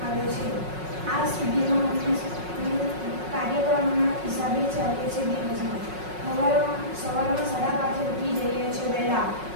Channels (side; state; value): left; late; 5.4 ms